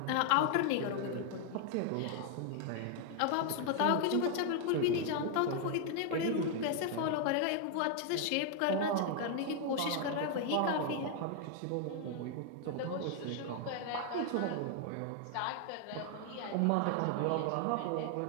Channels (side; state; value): both; different; correlation 0.00